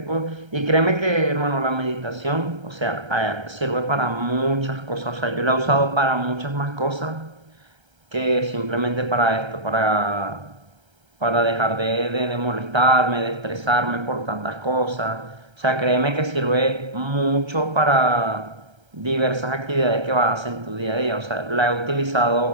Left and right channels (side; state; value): left; late; 1.3 ms